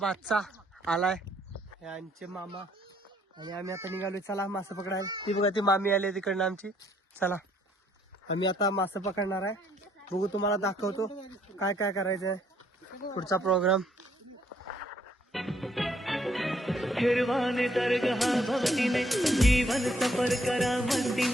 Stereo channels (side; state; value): both; normal; correlation 0.68